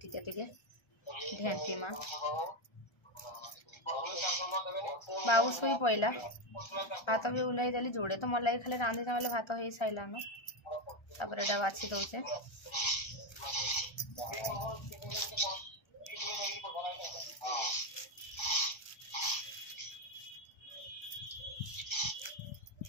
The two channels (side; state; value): right; late; 1.3 ms